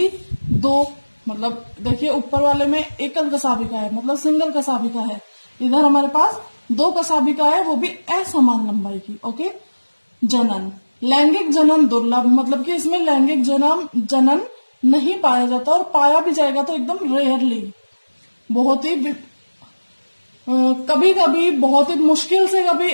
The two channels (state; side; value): inverted; both; correlation -1.00